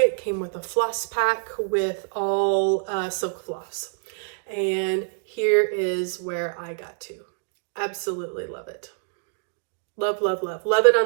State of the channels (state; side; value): silent; left; 61 dB below the other